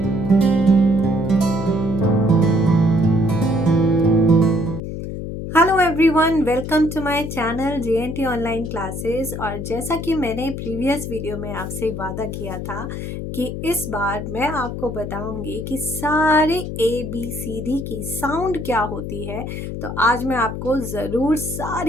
everyone, welcome to my channel JNT online classes. और जैसा कि मैंने प्रीवियस वीडियो में आपसे वादा किया था कि इस बार मैं आपको बताऊंगी कि सारे ABCD की साउंड क्या होती है। तो आज मैं आपको ज़रूर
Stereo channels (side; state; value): left; noise; hum, 6 dB below the sound